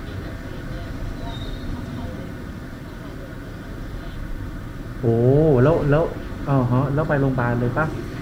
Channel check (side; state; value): both; identical; correlation 1.00